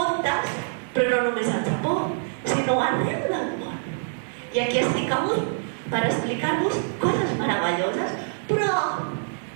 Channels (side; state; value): left; silent; digital silence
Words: però no només al Japó, sinó arreu del món. I aquí estic avui per explicar-vos coses meravelloses, però